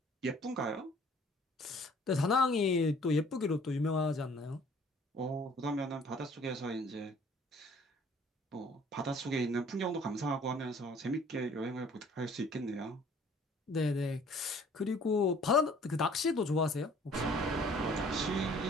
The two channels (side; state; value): both; normal; correlation 0.55